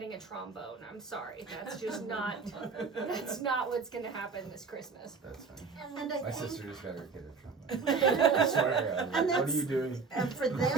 a trombone. I'm sorry. That's just not that's not what's going to happen this Christmas. That's funny. And I My think, sister just got her kid a trombone. I swear to God. And What are that's- you doing? and for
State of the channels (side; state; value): left; quieter; 4.9 dB